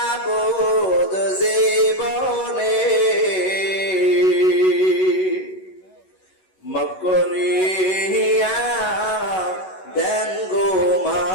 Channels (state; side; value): late; right; 11 ms